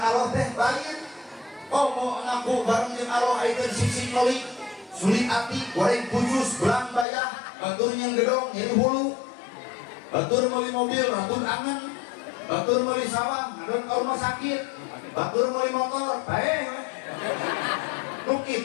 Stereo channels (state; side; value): drops out; right; at 7.1 s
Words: Allah teh lain. Komo ngaku bareng jeung Allah aya sisi meuli. Sulit ati, goreng khusus, belang bayah, batur yang gedong, nyeri hulu. Batur meuli mobil, ratun angen. Batur meuli sawah, ngadon ka rumah sakit. Batur meuli motor, bae. Nu